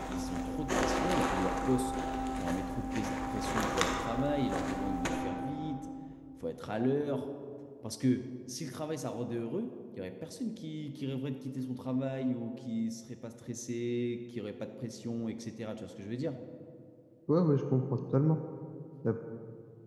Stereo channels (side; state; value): both; identical; correlation 1.00